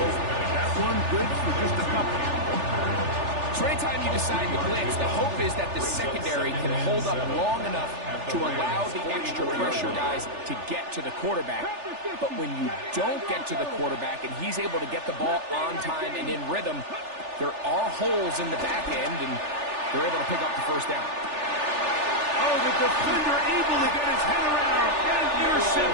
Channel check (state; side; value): late; left; 3.4 ms